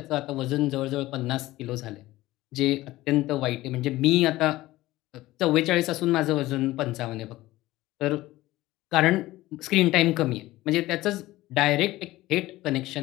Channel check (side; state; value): right; quieter; 17.3 dB